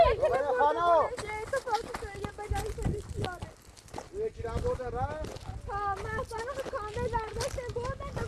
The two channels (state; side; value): identical; both; correlation 1.00